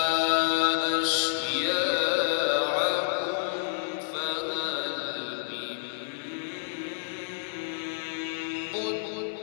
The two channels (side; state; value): right; silent; digital silence